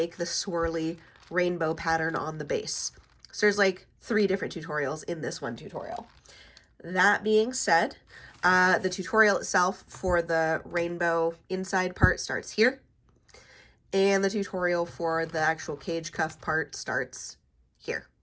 the swirly rainbow pattern on the base. So there's like 3 different tutorials in this one tutorial. That being said, the tutorial itself for the rainbow inside part starts here. And the tutorial for the actual cage cuff part starts here.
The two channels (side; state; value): both; identical; correlation 1.00